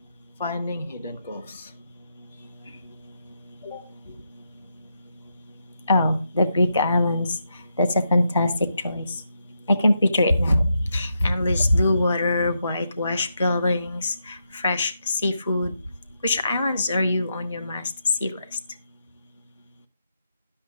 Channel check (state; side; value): inverted; both; correlation -0.82